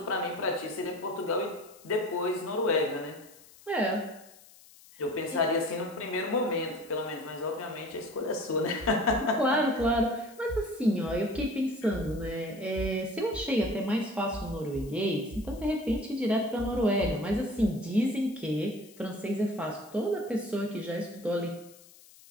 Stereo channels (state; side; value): noise; left; hiss, 23 dB below the sound